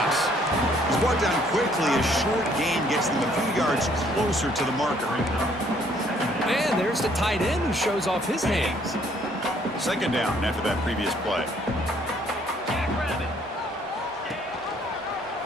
He's brought down quickly. A short gain gets them a few yards closer to the marker. And there's the tight end who shows off his hands. Second down after that previous play.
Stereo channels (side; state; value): both; normal; correlation 0.64